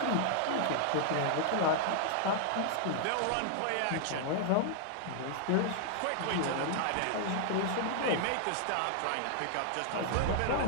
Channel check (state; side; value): different; both; correlation -0.01